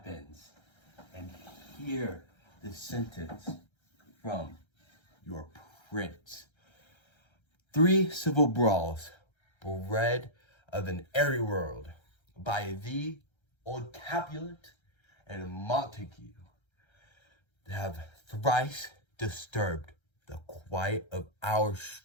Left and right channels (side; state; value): right; late; 1.3 ms